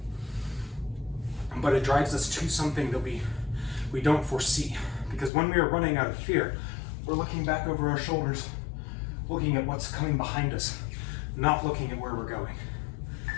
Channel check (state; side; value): drops out; right; at 5.3 s